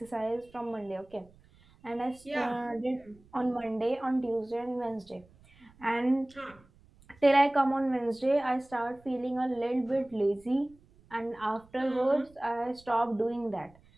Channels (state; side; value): noise; right; rumble, 28 dB below the sound